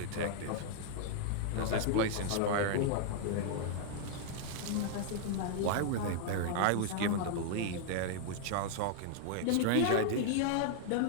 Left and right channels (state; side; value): different; both; correlation -0.01